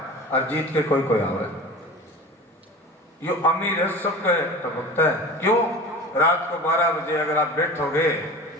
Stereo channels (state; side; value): normal; both; correlation 0.36